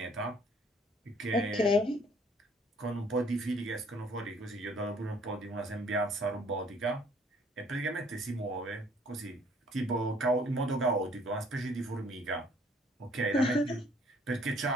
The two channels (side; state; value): both; normal; correlation 0.60